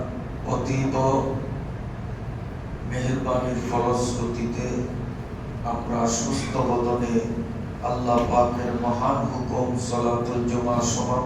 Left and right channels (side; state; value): both; identical; correlation 1.00